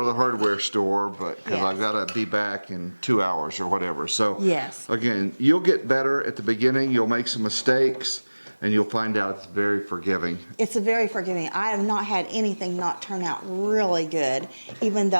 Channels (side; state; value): both; inverted; correlation -1.00